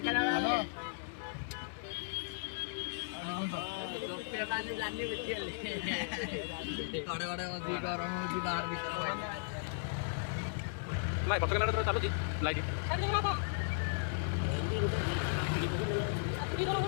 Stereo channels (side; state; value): right; silent; digital silence